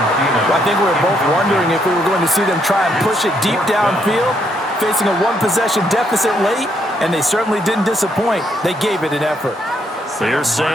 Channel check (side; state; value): both; normal; correlation 0.74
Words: Well, I think we were both wondering if we were going to see them try and push it deep downfield. facing a one-possession deficit late, and they certainly didn't disappoint. They gave it an effort. Here's